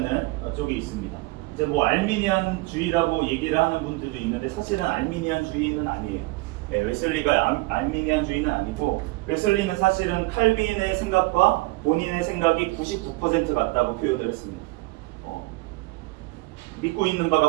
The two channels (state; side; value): quieter; left; 22.0 dB